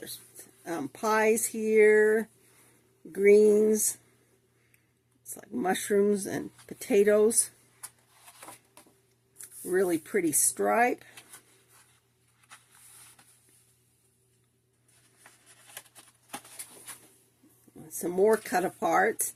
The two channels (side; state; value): both; identical; correlation 1.00